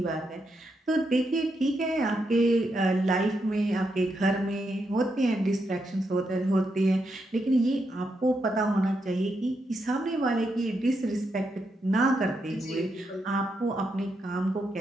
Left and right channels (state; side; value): normal; both; correlation 0.82